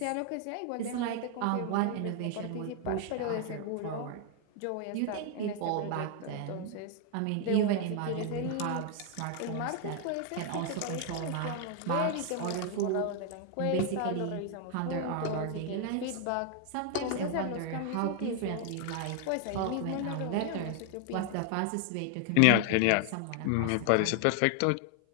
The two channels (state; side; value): different; both; correlation 0.00